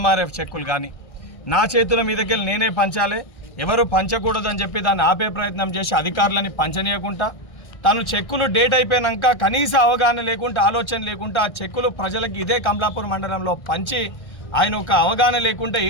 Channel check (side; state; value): right; late; 1.6 ms